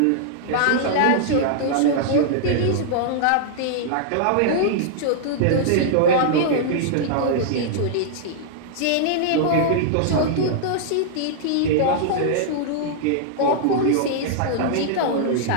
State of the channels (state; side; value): different; both; correlation -0.01